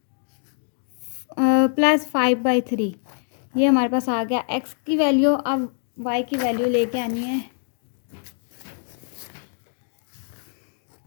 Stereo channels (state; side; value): silent; right; 61 dB below the other